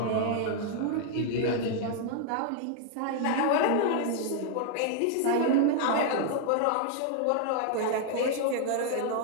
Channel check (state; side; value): different; both; correlation -0.01